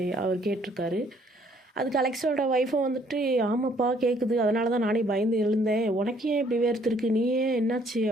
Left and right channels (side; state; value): both; normal; correlation 0.63